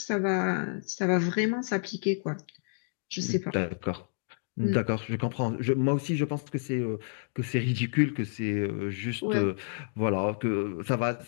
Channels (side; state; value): right; silent; digital silence